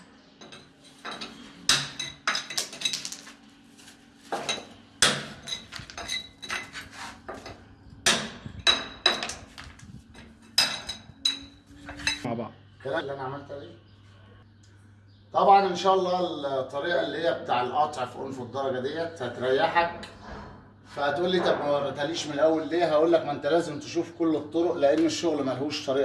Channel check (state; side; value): identical; both; correlation 1.00